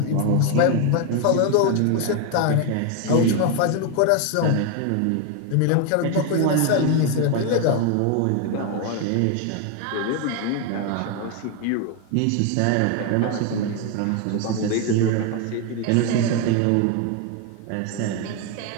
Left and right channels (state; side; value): different; both; correlation 0.01